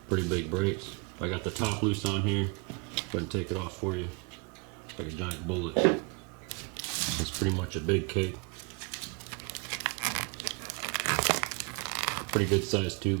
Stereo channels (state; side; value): quieter; left; 33.1 dB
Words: Pretty big breaks. I got the top loose on here. Go ahead and take it off for you. It's like a giant bullet. It's pretty much a big cake. Pretty good sized